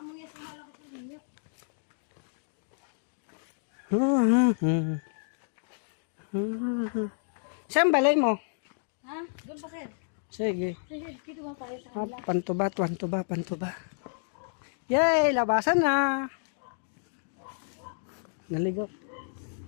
niya sa malakot ko niya. Saan balay mo? Ha? Doon pa sir. Sige. Sige, dito ba tayo sa Pantuba. Yay, labasan na. Naligo.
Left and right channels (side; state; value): right; silent; digital silence